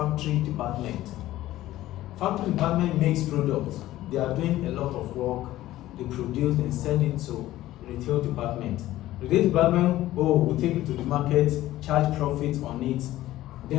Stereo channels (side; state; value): right; quieter; 15.2 dB